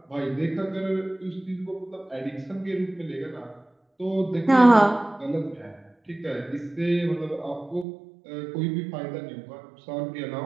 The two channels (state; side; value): drops out; left; at 7.9 s